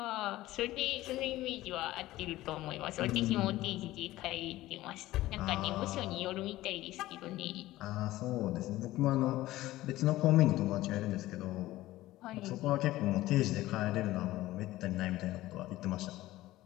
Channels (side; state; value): right; quieter; 16.5 dB